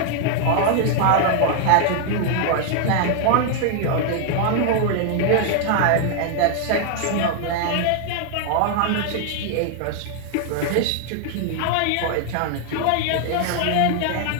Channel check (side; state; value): both; different; correlation 0.00